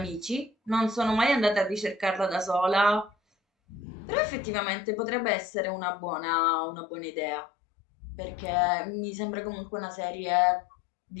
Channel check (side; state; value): right; drops out; at 3.8 s